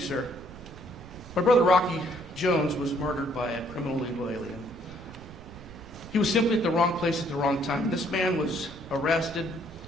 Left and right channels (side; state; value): right; noise; rumble, 16 dB below the sound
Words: sir. My brother Rocky Jones was murdered by a criminal illegal alien. He was simply at the wrong place at the wrong time. This man was arrested,